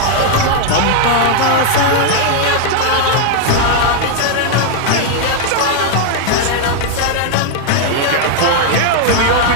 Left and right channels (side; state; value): both; different; correlation 0.00